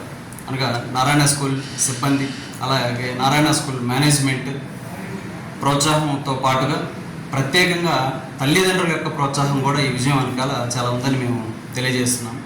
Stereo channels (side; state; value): both; identical; correlation 1.00